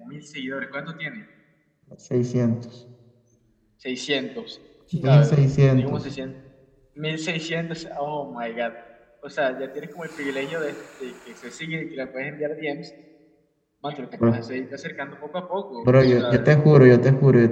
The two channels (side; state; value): both; identical; correlation 1.00